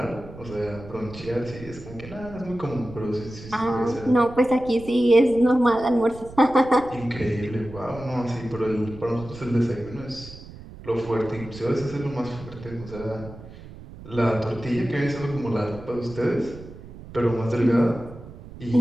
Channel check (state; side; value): noise; right; rumble, 16 dB below the sound